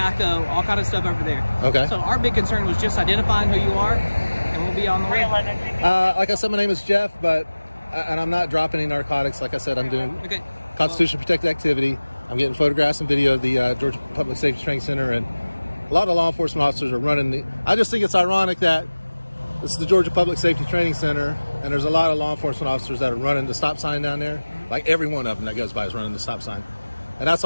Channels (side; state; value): both; inverted; correlation -1.00